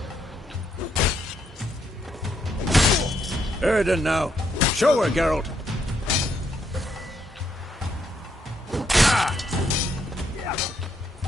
Erden now. Show her, Geralt.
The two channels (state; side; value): normal; both; correlation 0.75